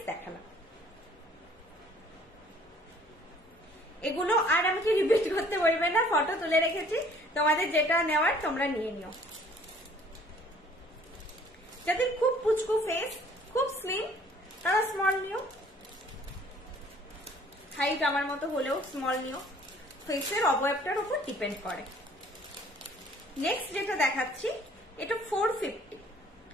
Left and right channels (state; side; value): normal; both; correlation 0.56